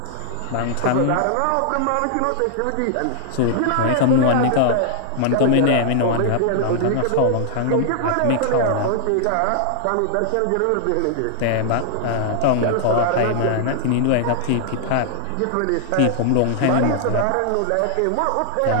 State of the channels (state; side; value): different; both; correlation 0.00